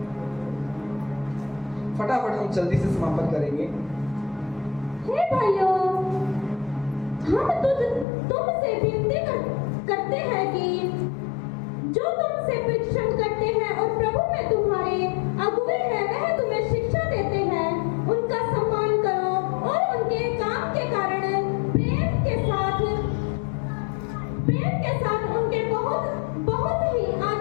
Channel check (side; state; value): right; drops out; at 8.1 s